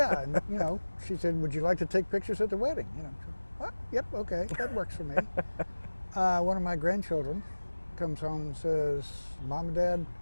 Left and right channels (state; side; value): inverted; both; correlation -1.00